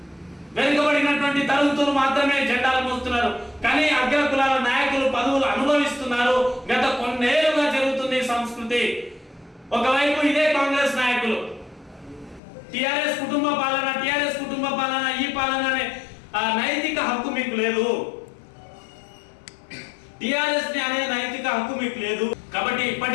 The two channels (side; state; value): right; drops out; at 12.4 s